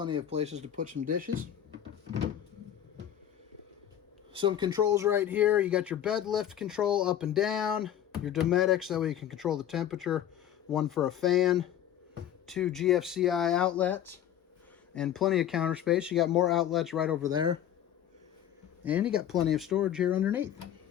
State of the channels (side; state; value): right; quieter; 10.6 dB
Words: of places to put some dishes. Some controls right here. You got your bed lift control up and down. Your Dometics, that way you can control the temperature. One for a fan. 2 GFCI outlets. And plenty of counter space. You got more outlets right over there. And you got plenty of storage here underneath.